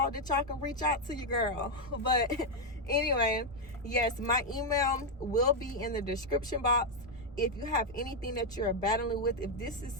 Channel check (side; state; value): both; normal; correlation 0.01